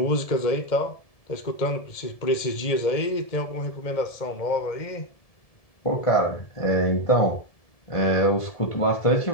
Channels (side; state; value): right; late; 1.7 ms